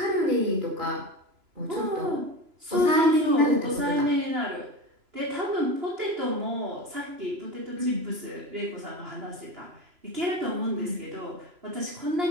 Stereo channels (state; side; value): late; left; 3.0 ms